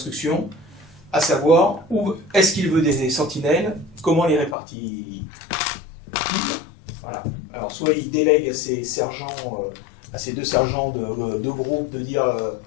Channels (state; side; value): drops out; right; at 4.5 s